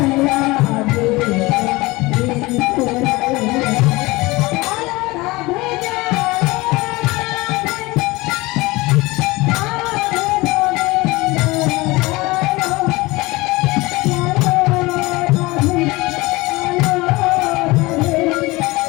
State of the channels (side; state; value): right; quieter; 21.9 dB